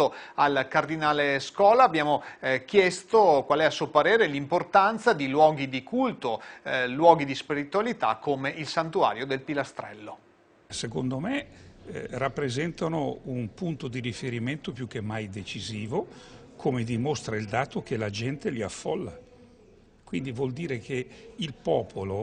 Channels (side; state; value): both; identical; correlation 1.00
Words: al Cardinale Scola abbiamo chiesto qual è a suo parere l'importanza di luoghi di culto, luoghi di spiritualità come il Santuario del Pilastrello. Secondo me rappresentano un punto di riferimento più che mai decisivo, come dimostra il dato che la gente li affolla. Quindi vuol dire che il